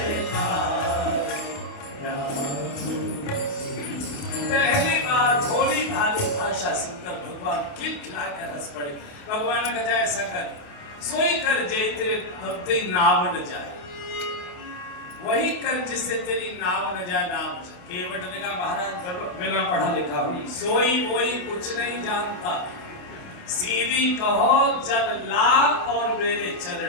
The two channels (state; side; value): late; right; 28 ms